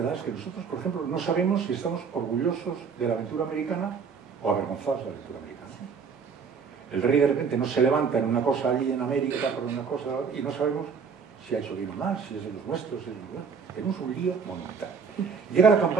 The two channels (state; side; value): quieter; left; 5.9 dB